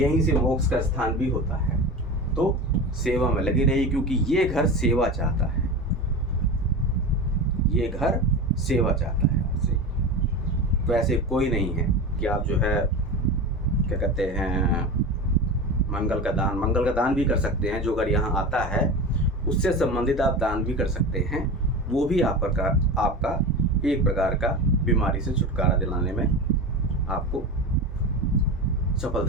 यहीं से मोक्ष का स्थान भी होता है, तो सेवा में लगी रही, क्योंकि ये घर सेवा चाहता है, ये घर सेवा चाहता है आपसे। वैसे कोई नहीं है कि आप जो है क्या कहते हैं मंगल का दान भी कर सकते हैं। जो घर यहाँ आता है उससे संबंधित आप दान भी कर सकते हैं, वो भी आपका एक प्रकार का बीमारी से छुटकारा दिलाने में आपको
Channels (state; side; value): normal; both; correlation 0.27